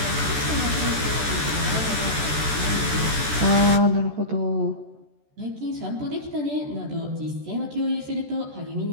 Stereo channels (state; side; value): late; left; 14 ms